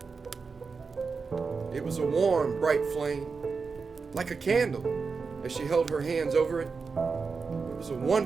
It was a warm, bright flame, like a candle, as she held her hands over it. It was a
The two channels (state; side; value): quieter; left; 4.9 dB